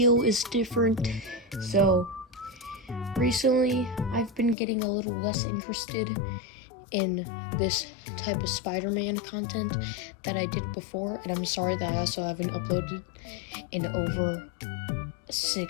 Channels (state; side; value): drops out; right; at 4.5 s